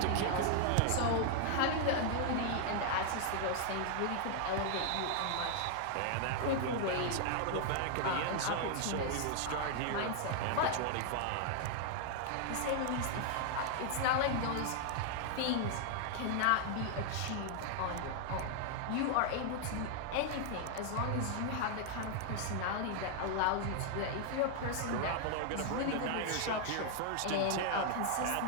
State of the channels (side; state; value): both; different; correlation 0.00